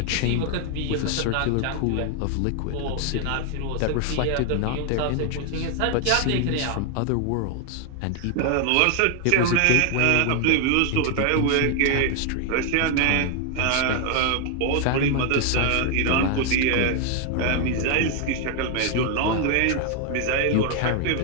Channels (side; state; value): both; different; correlation 0.00